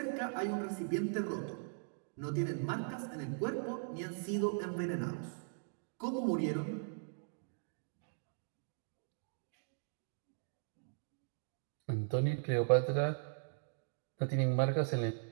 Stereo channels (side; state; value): left; silent; digital silence